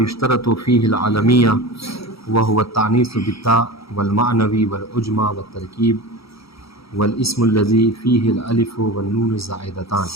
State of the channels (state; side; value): late; right; 0.76 ms